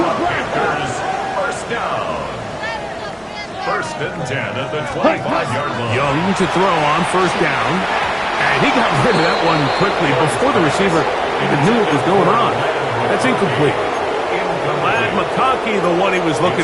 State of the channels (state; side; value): identical; both; correlation 1.00